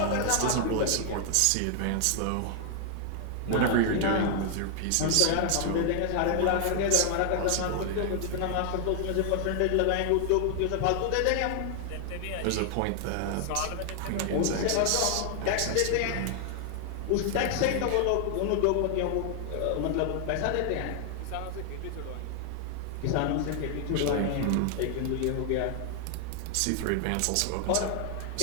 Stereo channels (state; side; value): different; both; correlation 0.00